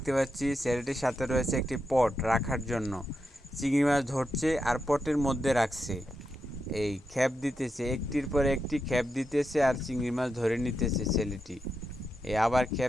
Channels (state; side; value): normal; both; correlation 0.86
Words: পাচ্ছি। ছেলেটির সাথে রয়েছে একটি পট রাখার জন্য। চিংড়ি মাছ ধরছে আর পটের মধ্যে রাখছে। এই খেপ দিতেছে, একটির পর একটি খেপ দিতেছে আর চিংড়ি মাছ ধরে নিতেছে ছেলেটি। এই আবার